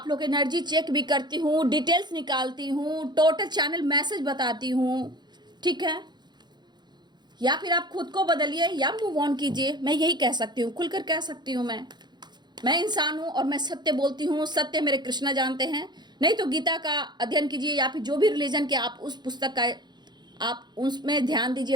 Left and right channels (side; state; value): left; late; 0.21 ms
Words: लोग एनर्जी चेक भी करती हूँ, डिटेल्स निकालती हूँ, टोटल चैनल मैसेज बताती हूँ। ठीक है, या फिर आप खुद को बदलिए या मूव ऑन कीजिए, मैं यही कह सकती हूँ, खुलकर कह सकती हूँ। मैं इंसान हूँ और मैं सत्य बोलती हूँ, सत्य मेरे कृष्णा जानते हैं। नहीं तो गीता का अध्ययन कीजिए, या फिर जो भी रिलीजन के आप उस पुस्तक का आप उसमें ध्यान